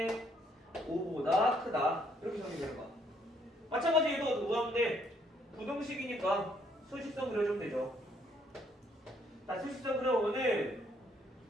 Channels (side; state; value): both; normal; correlation 0.68